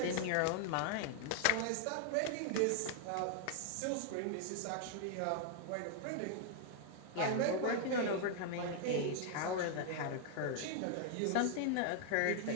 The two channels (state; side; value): different; both; correlation 0.00